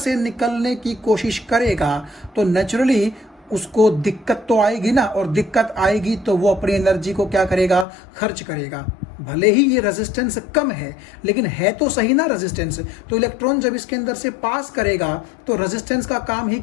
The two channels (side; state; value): right; drops out; at 7.9 s